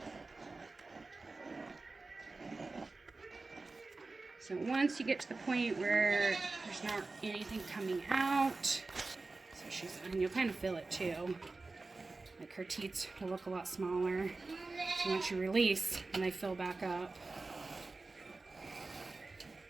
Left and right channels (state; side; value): quieter; left; 3.6 dB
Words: So once you get to the point where there's not anything coming out, so and you'll kind of feel it too. Like her teats will look a lot smaller. So once you release, and they fill back up.